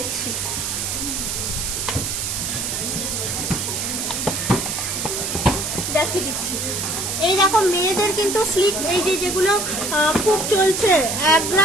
দেখিয়ে দিচ্ছি। এই দেখো মেয়েদের কিন্তু স্লিক, এই যেগুলো খুব চলছে, 1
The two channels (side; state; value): right; noise; hiss, 2 dB below the sound